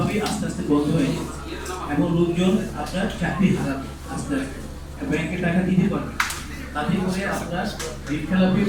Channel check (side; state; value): both; identical; correlation 1.00